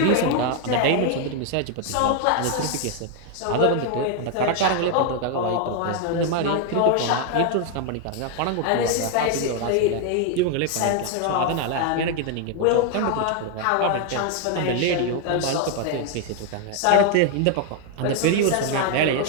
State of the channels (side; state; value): both; different; correlation 0.01